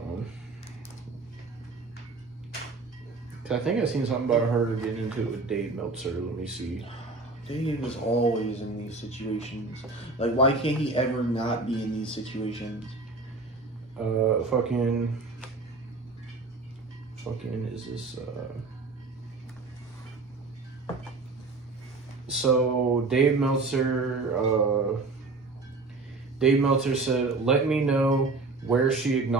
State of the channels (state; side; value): quieter; left; 3.6 dB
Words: 'Cause I think I seen something about her getting into it with Dave Meltzer. Let me see. Dave is always in these situations. Like, why can't he ever not be in these situations? Fucking is this, So, Dave Meltzer said, let me know where she